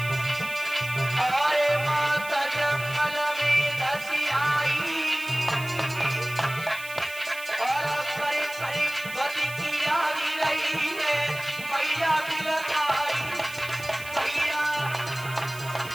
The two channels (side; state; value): right; noise; hiss, 15 dB below the sound